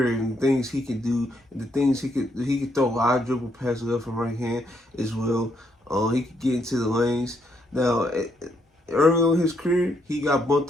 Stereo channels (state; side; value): normal; both; correlation 0.75